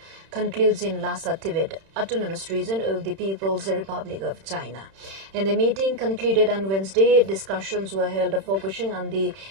concludes in Lhasa, Tibet, Autonomous Region of the People's Republic of China. In the meeting concluded on Wednesday, discussions were held focusing on the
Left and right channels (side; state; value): left; late; 31 ms